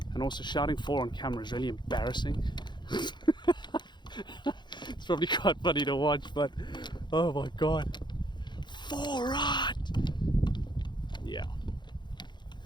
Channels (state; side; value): late; right; 0.22 ms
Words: And also, shouting 4 on camera is really embarrassing. It's probably quite funny to watch, but oh my god, 4 right! Yeah,